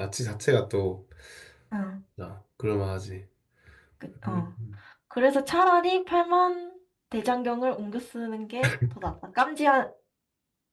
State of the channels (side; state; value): both; identical; correlation 1.00